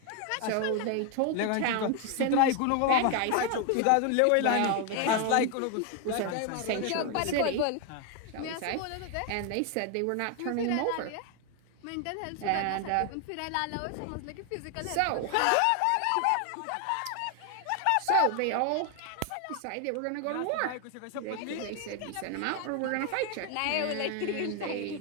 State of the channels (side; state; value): both; different; correlation 0.01